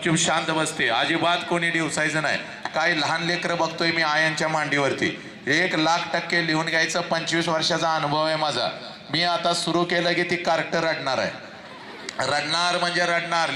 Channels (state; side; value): identical; both; correlation 1.00